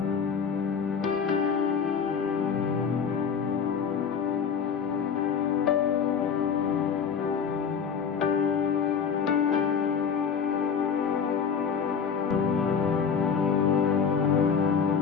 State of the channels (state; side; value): quieter; right; 6.5 dB